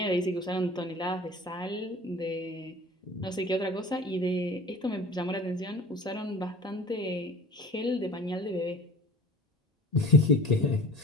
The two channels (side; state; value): both; normal; correlation 0.42